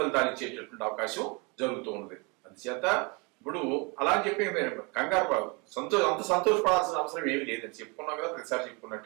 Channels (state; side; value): quieter; left; 30.3 dB